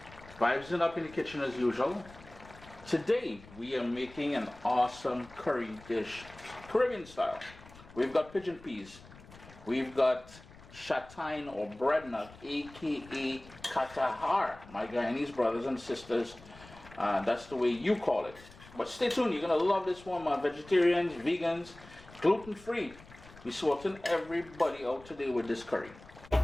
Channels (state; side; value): noise; left; rumble, 21 dB below the sound